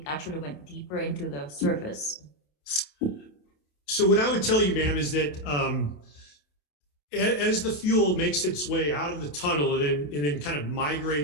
actually went deeper into the surface. So what I would tell you, ma'am, is that as the fuel makes its way out of the tunnel and then kind of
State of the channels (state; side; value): late; right; 27 ms